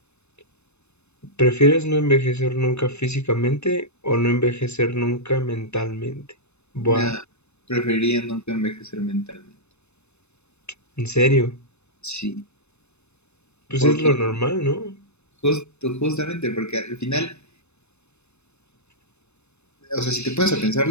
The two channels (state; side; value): late; right; 0.81 ms